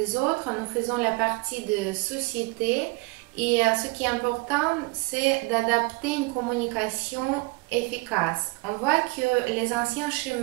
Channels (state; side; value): quieter; left; 25.5 dB